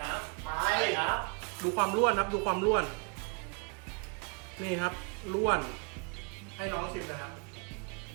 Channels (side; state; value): left; quieter; 34.7 dB